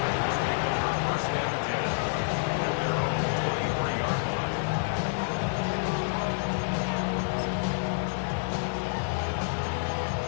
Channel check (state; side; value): silent; right; 59 dB below the other